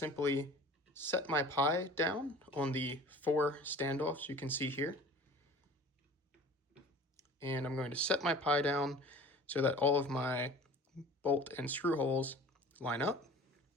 set my Pi down on the 4 standoffs you can see here. And I'm going to set my Pi down so that all of my bolt and screw holes line up.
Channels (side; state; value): both; normal; correlation 0.43